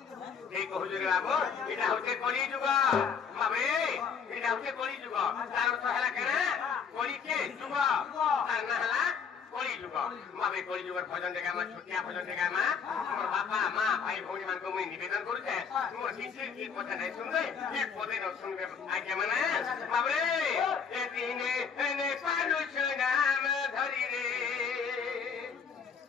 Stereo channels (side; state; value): right; quieter; 6.4 dB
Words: এই কহুজুরে বাবু এটা হচ্ছে কলি যুগ বাবুরে এটা হচ্ছে কলি যুগ তার অর্থ হেলা কেন কলিকে যুগ আর না হেলা কলি যুগ বাবু কলি যুগের ভজন দেখে আমার ছুটিয়া ভজন দেখে আমার আমার বাপা মা ভাই ভৌণী মানকে মুই নিবেদন করছে মোর কিছু কি কথা নাই শুনবে এক পদে ন শুনবে আগে মানে বাবুরে এ দিনে এনে পারুছ নাম ধরি রে